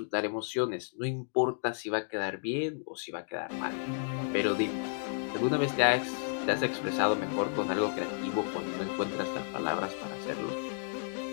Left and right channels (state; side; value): silent; right; digital silence